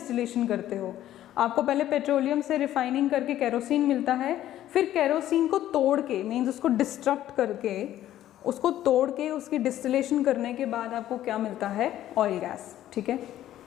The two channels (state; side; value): quieter; right; 12.8 dB